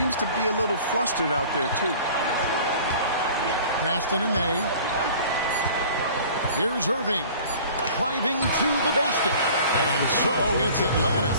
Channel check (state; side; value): inverted; both; correlation -0.46